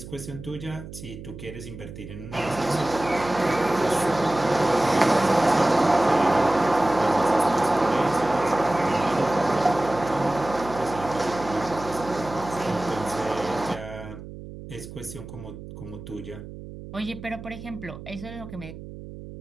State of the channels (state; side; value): noise; right; hum, 13 dB below the sound